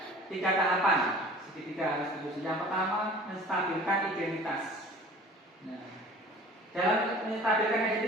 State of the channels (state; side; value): normal; both; correlation 0.45